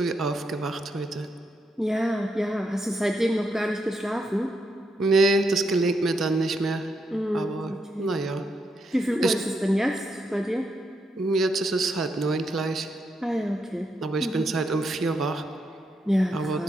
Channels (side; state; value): both; normal; correlation 0.80